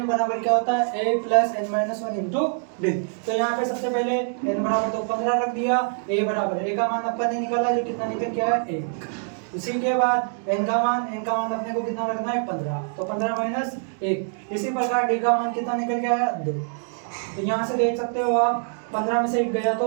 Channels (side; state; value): left; silent; 57 dB below the other